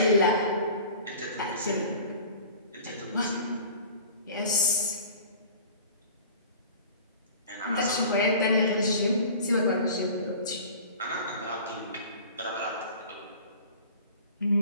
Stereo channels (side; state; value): both; inverted; correlation -0.42